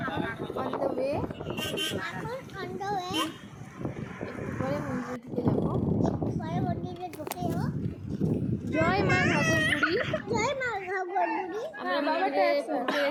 On the way. এখন অন দ্য ওয়ে। একটু পরে মন্দিরে ঢুকে যাবো। একটু পরে মন্দিরে ঢুকে যাবো। জয় মা ঘাগরবুড়ি। জয় মা ঘাগরবুড়ি। আমরা মন্দিরে পৌঁছে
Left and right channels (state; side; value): identical; both; correlation 1.00